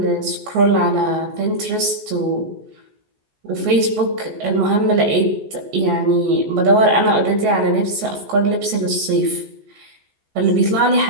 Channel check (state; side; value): late; left; 14 ms